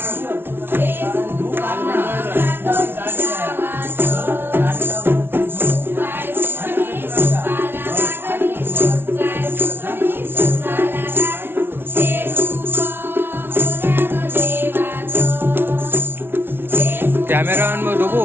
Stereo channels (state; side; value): late; left; 0.11 ms